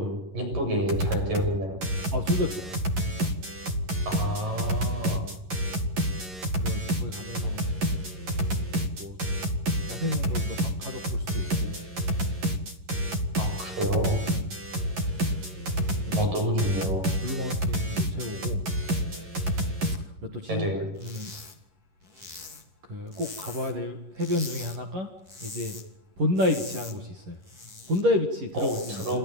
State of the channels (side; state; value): left; late; 11 ms